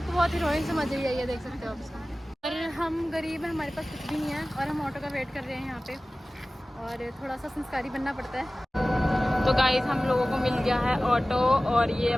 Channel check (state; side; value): normal; both; correlation 0.97